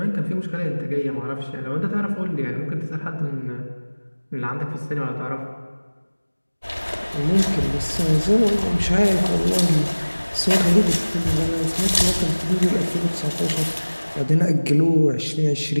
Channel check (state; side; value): inverted; both; correlation -1.00